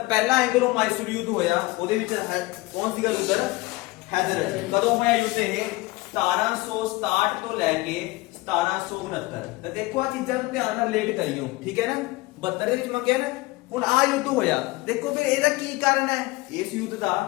ਪਹਿਲਾ ਐਂਗਲੋ ਮਾਈਸੂਰ ਯੁੱਧ ਹੋਇਆ, ਉਹਦੇ ਵਿੱਚ ਕੌਣ ਸੀਗਾ ਲੀਡਰ? ਹੈਦਰ ਅਲੀ। ਕਦੋਂ ਹੋਇਆ ਯੁੱਧ ਇਹ? 1767 ਤੋਂ ਲੈ ਕੇ 1769। ਤਾਂ ਦੇਖੋ ਆ ਚੀਜ਼ਾਂ ਨੂੰ ਧਿਆਨ ਨਾਲ ਰਿਲੇਟ ਕਰਿਓ, ਠੀਕ ਹੈ ਨਾ। 72 ਦੇ ਵਿੱਚ ਮੈਂ ਕਿਹਾ ਨਾ ਹੁਣ ਆ ਯੁੱਧ ਹੋਇਆ। ਦੇਖੋ ਫਿਰ ਇਹਦਾ ਕੀ ਕਾਰਨ ਹੈ? ਇਸ ਯੁੱਧ ਦਾ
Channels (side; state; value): right; quieter; 21.3 dB